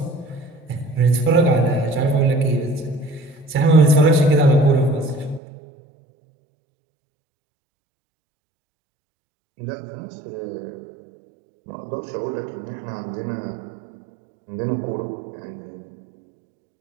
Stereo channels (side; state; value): left; drops out; at 5.4 s